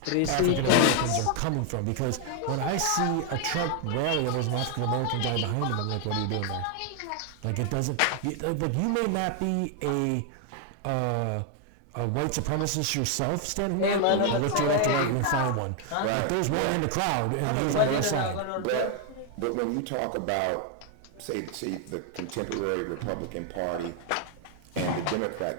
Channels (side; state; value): both; different; correlation 0.00